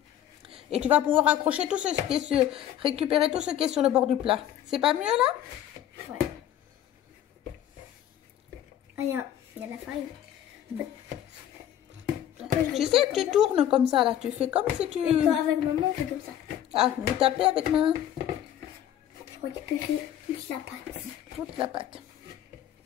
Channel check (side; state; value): right; quieter; 11.1 dB